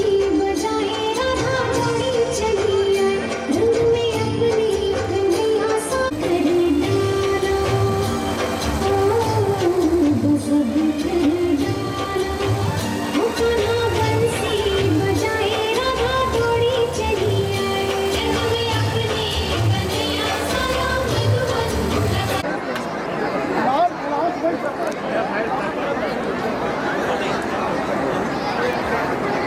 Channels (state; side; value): identical; both; correlation 1.00